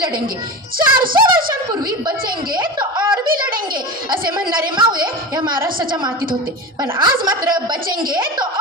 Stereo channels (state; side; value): normal; both; correlation 0.26